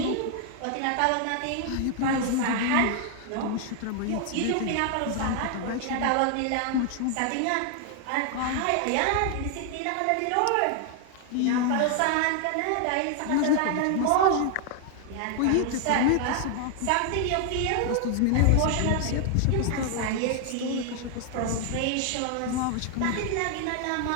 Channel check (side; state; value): both; different; correlation 0.00